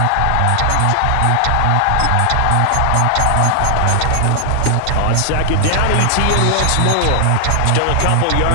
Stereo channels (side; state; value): both; different; correlation 0.00